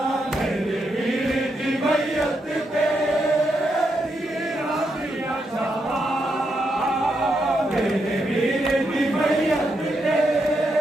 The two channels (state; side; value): normal; both; correlation 0.82